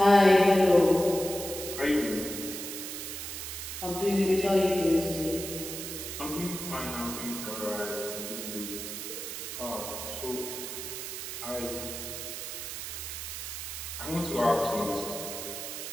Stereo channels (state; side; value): noise; right; hiss, 7 dB below the sound